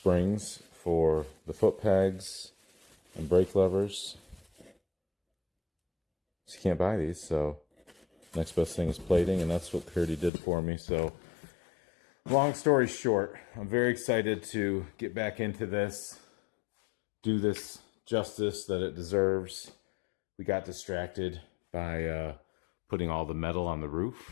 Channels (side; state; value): right; drops out; at 10.3 s